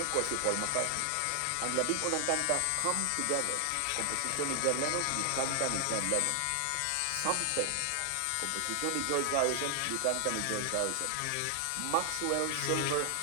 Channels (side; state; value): both; different; correlation 0.00